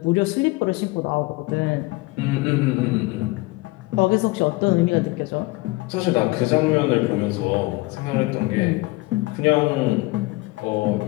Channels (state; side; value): quieter; right; 22.5 dB